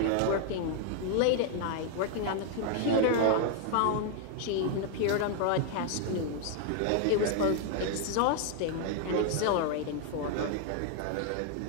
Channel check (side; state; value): both; different; correlation 0.00